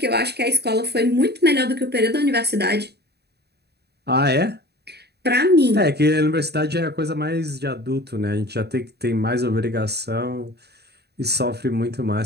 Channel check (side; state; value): left; late; 0.48 ms